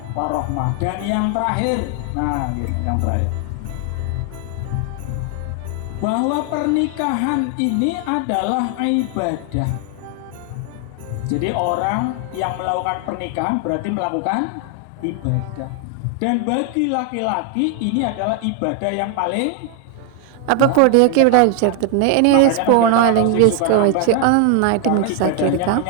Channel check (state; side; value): different; both; correlation 0.00